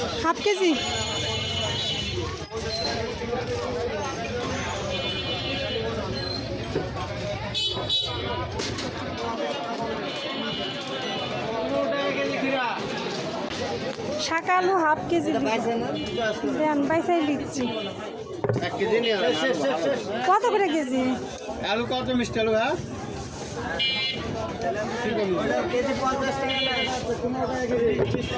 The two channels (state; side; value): identical; both; correlation 1.00